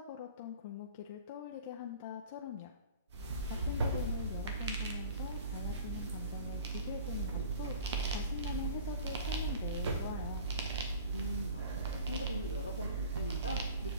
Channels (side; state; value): both; inverted; correlation -0.42